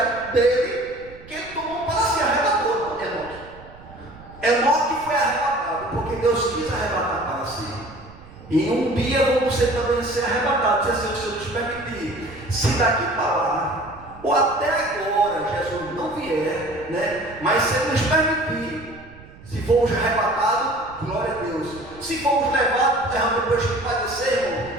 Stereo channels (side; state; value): right; noise; rumble, 20 dB below the sound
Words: dele, que ele tomou para se arrebatou, Enoque. Enoque foi arrebatado, porque Deus quis arrebatar para si. E um dia vamos também ser arrebatados, se assim o Senhor nos permitir. Se daqui para lá, ou até agora, Jesus não vier, né? Mas se Ele nos permitir, se formos arrebatados, glória a Deus. Se formos levados, depois que padecer,